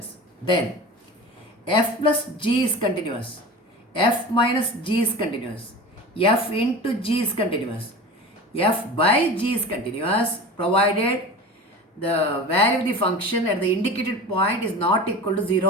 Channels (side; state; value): both; normal; correlation 0.33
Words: then f plus g is continuous, f minus g is continuous, f into g is continuous, f by g is continuous, provided the value of the function at the indicated point is not equal to